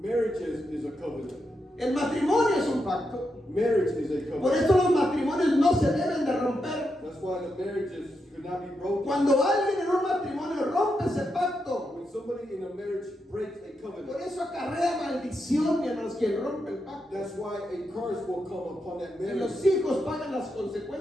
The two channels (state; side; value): normal; both; correlation 0.84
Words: Marriage is a covenant. El matrimonio es un pacto. Marriage is a Por covenant. eso los matrimonios no se deben de romper. That's why the marriages should not be broken. Cuando alguien en un matrimonio rompe ese pacto, When somebody in a marriage breaks a por covenant, eso acarrea maldición, mi hermanos, quien rompe el pacto. that's why a curse will come upon that Y los marriage, hijos pagan las and